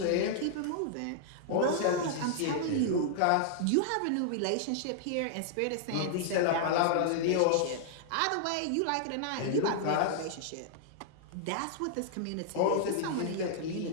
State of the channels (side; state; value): both; different; correlation -0.01